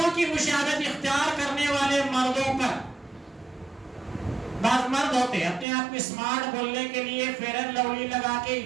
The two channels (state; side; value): drops out; left; at 5.7 s